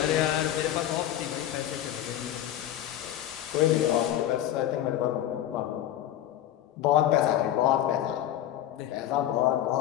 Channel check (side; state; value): right; quieter; 12.3 dB